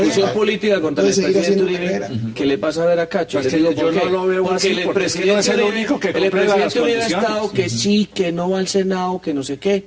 política contra el presidente Uribe. ¿Qué le pasa a ver a Cacho? Pues yo no lo veo así, porque el presidente Uribe ha estado que sí, que no va al Senado, que no sé qué,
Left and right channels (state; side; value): identical; both; correlation 1.00